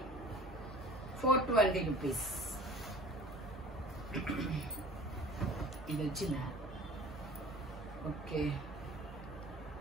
420 rupees. ఇది వచ్చిందా? ఓకే.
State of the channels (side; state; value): both; normal; correlation 0.44